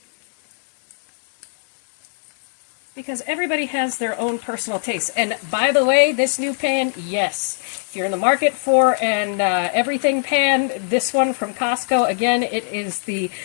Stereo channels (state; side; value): silent; right; 65 dB below the other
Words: Because everybody has their own personal taste. And by the way, this new pan, yes, if you're in the market for an everything pan, this one from Costco, again, it is the